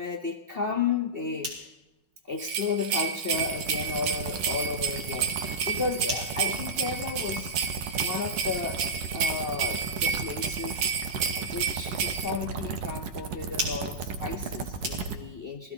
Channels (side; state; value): left; late; 5.4 ms